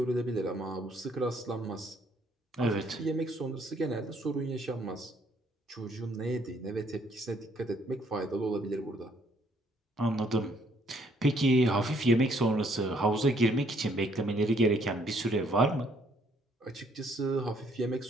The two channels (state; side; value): normal; both; correlation 0.66